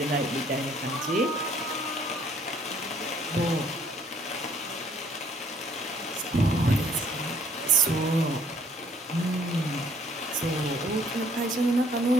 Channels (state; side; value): normal; both; correlation 0.61